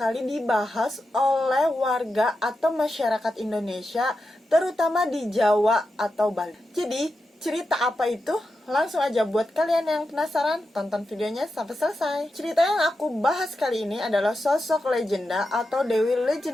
dibahas oleh warga atau masyarakat Indonesia, terutama di Jawa atau Bali. Jadi, cerita apa itu? Langsung aja buat kalian yang penasaran, tonton videonya sampai selesai. Cerita yang aku bahas kali ini adalah sosok legenda atau dewi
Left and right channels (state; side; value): normal; both; correlation 0.89